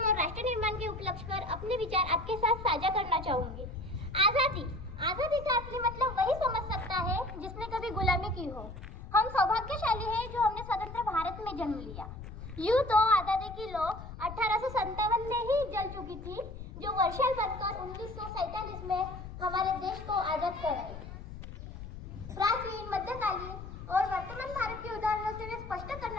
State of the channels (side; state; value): left; noise; rumble, 11 dB below the sound